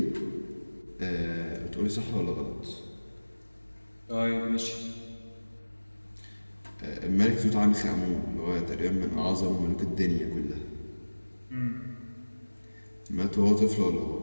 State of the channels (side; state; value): both; inverted; correlation -1.00